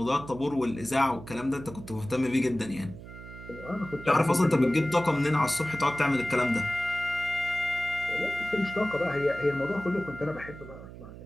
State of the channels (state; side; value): noise; right; hum, 14 dB below the sound